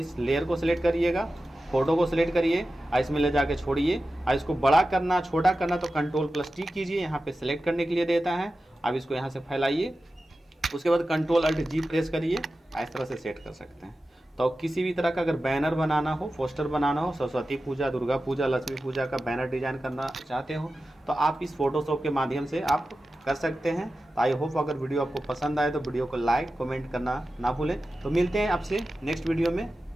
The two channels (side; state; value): both; normal; correlation 0.93